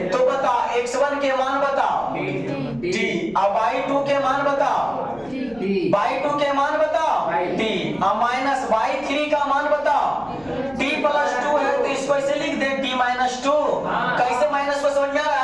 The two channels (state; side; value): noise; left; rumble, 25 dB below the sound